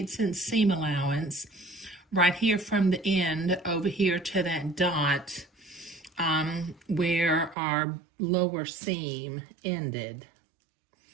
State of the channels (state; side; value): drops out; left; at 7.6 s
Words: inch seam allowance right here from the end over here to that dot where our lower seam ended.